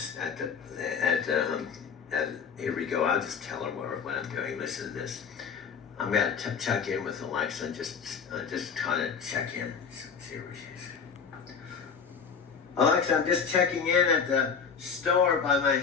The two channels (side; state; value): right; quieter; 6.3 dB